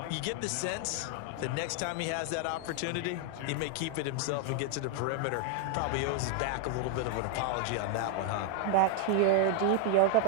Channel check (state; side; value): different; both; correlation 0.00